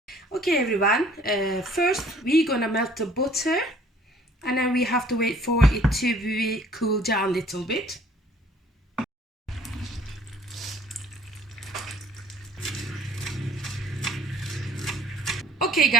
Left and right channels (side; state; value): both; normal; correlation 0.56